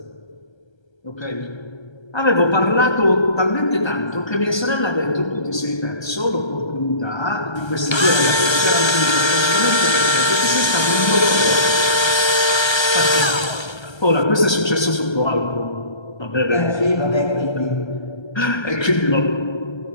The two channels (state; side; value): late; right; 1.3 ms